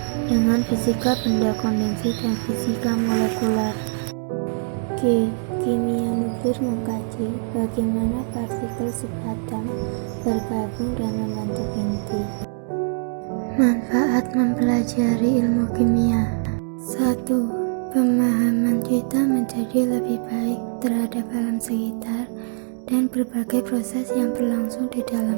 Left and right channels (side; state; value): left; silent; digital silence